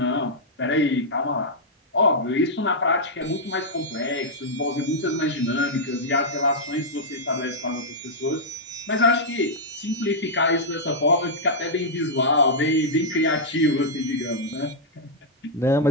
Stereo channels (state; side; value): normal; both; correlation -0.07